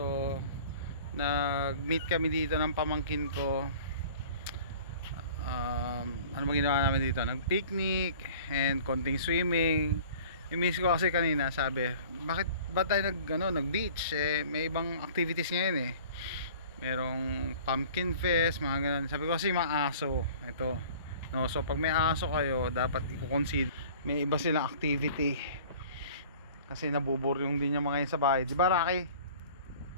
nag-meet kami dito ng pamangkin ko. Ano ba ginawa namin dito? Nag-picnic and konting swimming. Yung miss ko kasi kanina sabi, bakit ba tayo nag-beach? May ibang activities ngayon eh. Merong pumpkin fest, mga ganun. Sabi ko kasi mga aso ito, no? So pag may aso kayo, dapat i-consider may iba silang activity kasi nabuburyong din yung mga yun sa bahay, di ba Rocky?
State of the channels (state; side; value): inverted; both; correlation -0.46